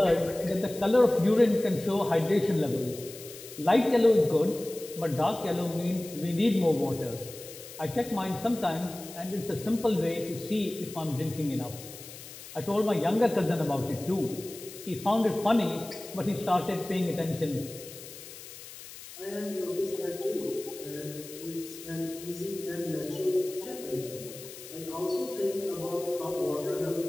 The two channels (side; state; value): left; noise; hiss, 15 dB below the sound